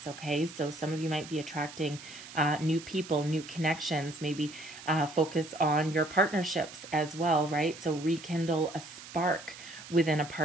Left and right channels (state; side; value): noise; right; hiss, 15 dB below the sound